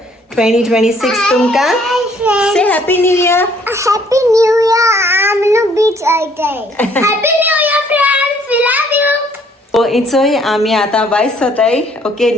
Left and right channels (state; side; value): normal; both; correlation 0.62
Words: 2026 तुमका से happy new year Happy New Year. I'm on the beach all day. Happy New Year, friends. We love you. सो इचोय आम्ही आता वायस होताय ओके